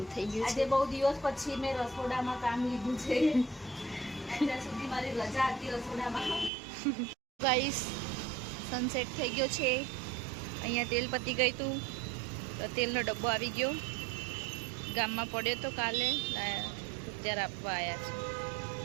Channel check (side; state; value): left; drops out; at 6.5 s